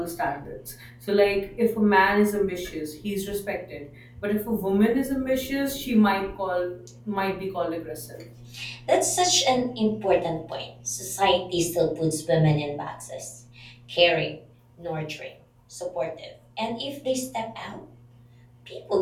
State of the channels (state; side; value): identical; both; correlation 1.00